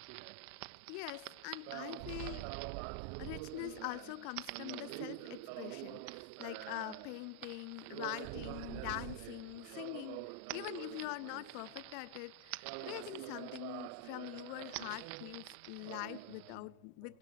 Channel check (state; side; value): different; both; correlation 0.00